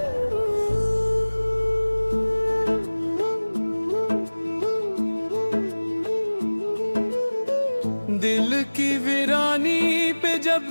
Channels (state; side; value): inverted; both; correlation -1.00